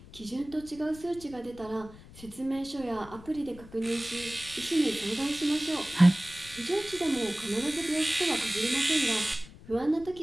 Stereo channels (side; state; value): left; noise; rumble, 19 dB below the sound